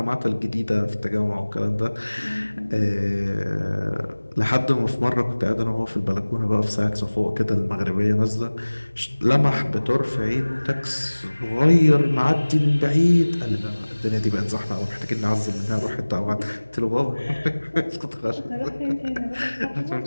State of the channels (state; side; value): inverted; both; correlation -1.00